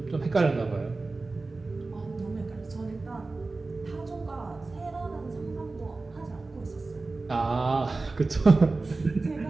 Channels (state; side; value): quieter; left; 3.5 dB